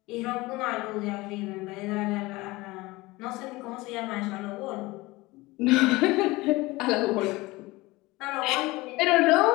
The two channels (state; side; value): quieter; right; 21.2 dB